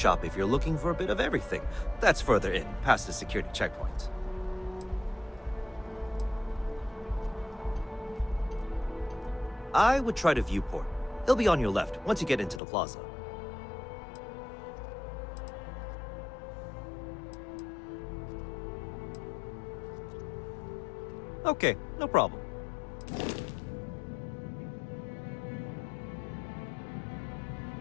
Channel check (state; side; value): drops out; right; at 12.6 s